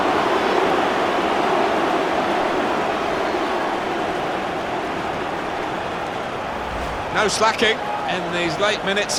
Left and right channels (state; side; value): identical; both; correlation 1.00